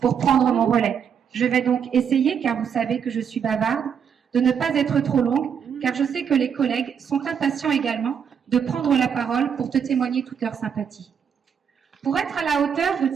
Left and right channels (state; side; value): quieter; left; 7.5 dB